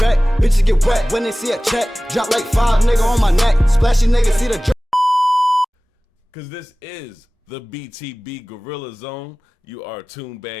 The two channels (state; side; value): normal; both; correlation 0.98